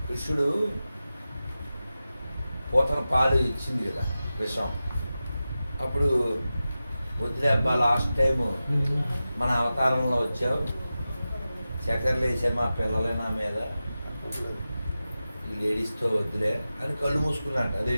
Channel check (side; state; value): both; inverted; correlation -0.94